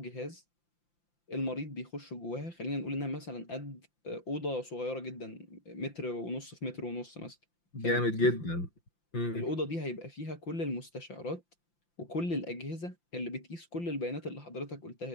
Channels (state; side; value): late; right; 5.8 ms